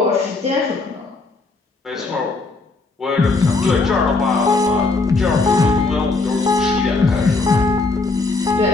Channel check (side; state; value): right; quieter; 3.6 dB